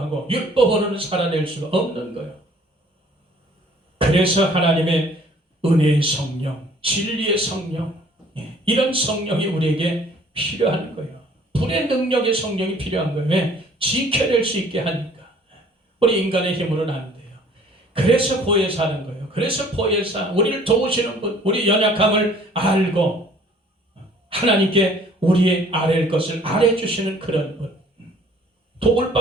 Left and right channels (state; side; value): normal; both; correlation 0.55